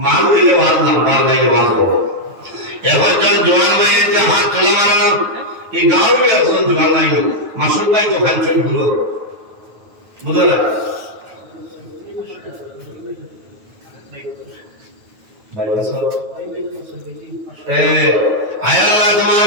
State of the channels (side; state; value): left; late; 9.3 ms